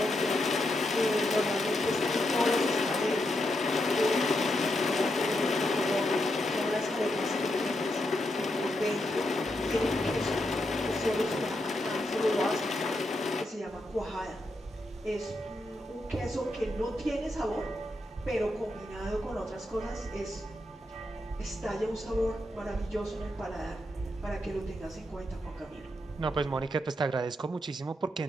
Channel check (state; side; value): normal; both; correlation 0.83